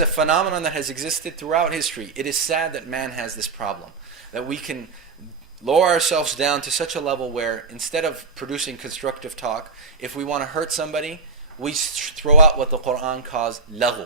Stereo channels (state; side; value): quieter; left; 4.2 dB